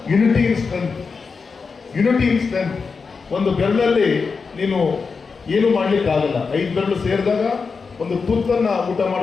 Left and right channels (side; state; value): right; quieter; 5.0 dB